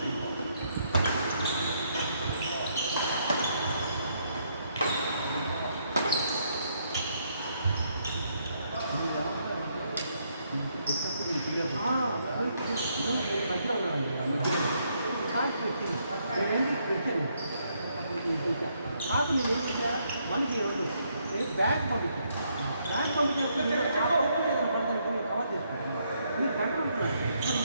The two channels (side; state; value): both; inverted; correlation -0.74